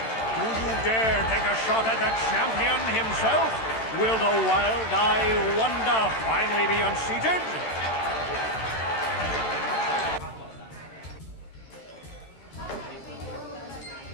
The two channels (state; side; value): late; right; 13 ms